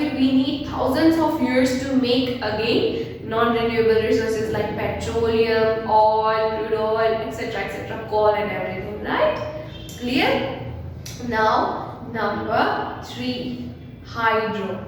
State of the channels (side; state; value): both; identical; correlation 1.00